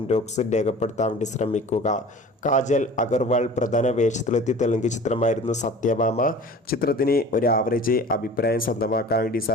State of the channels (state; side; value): normal; both; correlation 0.41